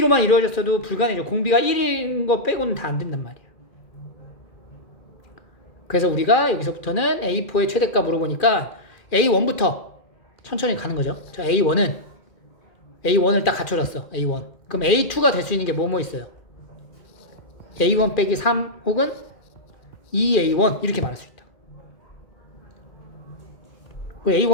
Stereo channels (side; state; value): right; late; 2.4 ms